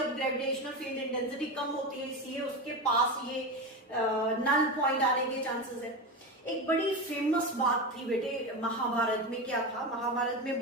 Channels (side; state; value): both; normal; correlation 0.19